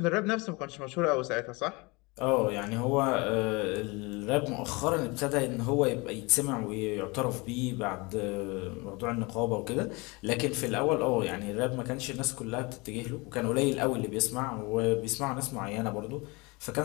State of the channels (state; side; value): quieter; right; 26.1 dB